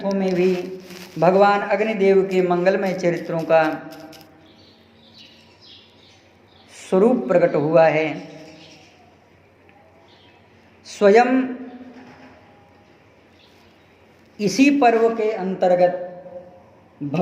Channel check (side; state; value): both; identical; correlation 1.00